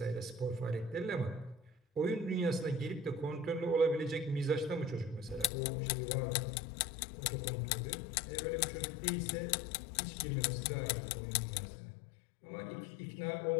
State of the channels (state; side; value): drops out; right; at 5.5 s